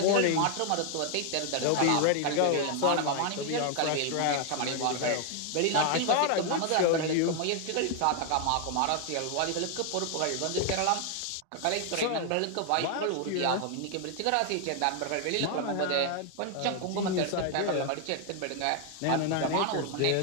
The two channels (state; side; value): different; both; correlation 0.00